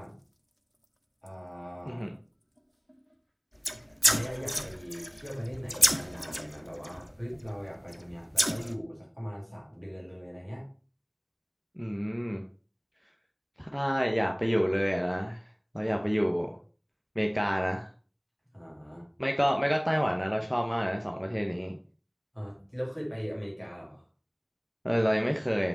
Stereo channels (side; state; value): both; identical; correlation 1.00